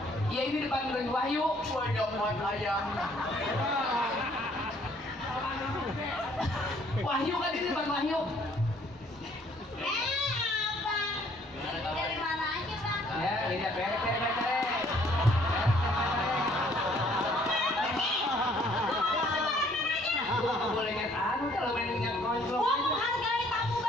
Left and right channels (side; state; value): both; normal; correlation 0.61